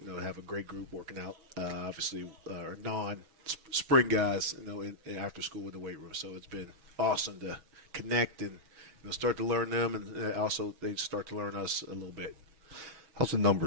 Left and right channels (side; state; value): left; late; 6.8 ms